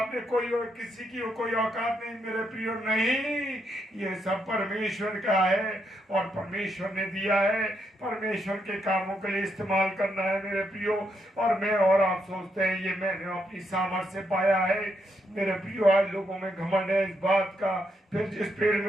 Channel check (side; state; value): both; normal; correlation 0.79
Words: कोई किसी की कोई औकात नहीं? मेरे प्रियो, नहीं, ये सब परमेश्वर का है और परमेश्वर ने दिया है। परमेश्वर के कामों के लिए इस्तेमाल करना है मेरे प्रियो। और मैं और आप सोचते हैं ये मैंने अपनी सामर्थ्य से पाया है। मेरे प्रियो, आज लोगों में घमंड है इस बात का। फिर जिस पेड़